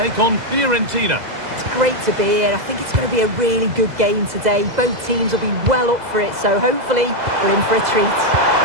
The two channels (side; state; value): left; late; 2.0 ms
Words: on Fiorentina. It's great to be here. I think it's going to be a really good game today. Both teams will be well up for it, so hopefully we're in for a treat.